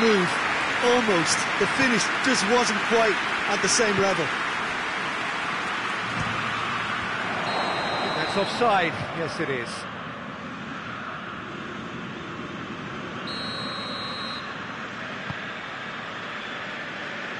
Almost. The finish just wasn't quite at the same level. That's offside. Yes, it is.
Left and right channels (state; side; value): identical; both; correlation 1.00